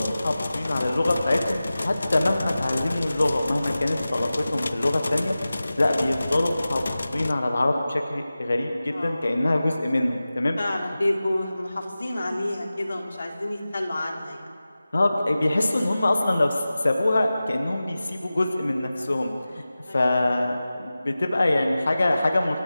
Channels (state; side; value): inverted; both; correlation -0.96